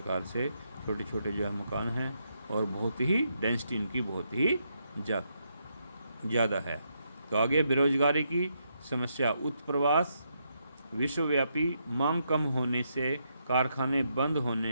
से छोटे छोटे जो है मकान हैं और बहुत ही डेंसिटी इनकी बहुत ही ज़्यादा है। तो आगे बेरोजगारी की समस्या, उत्प्रवास, विश्वव्यापी मांग कम होने से कारखाने बंद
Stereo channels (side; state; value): both; inverted; correlation -0.79